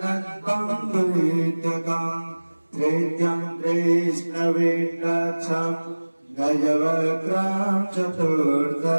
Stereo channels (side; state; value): both; inverted; correlation -1.00